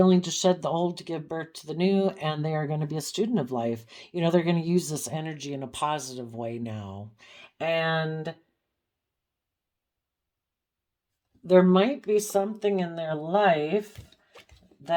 to shed the old to give birth to the new, and they are going to be a student of life. You know, they're going to use this energy in a positive way now. And there might be something in their life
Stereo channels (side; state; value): both; identical; correlation 1.00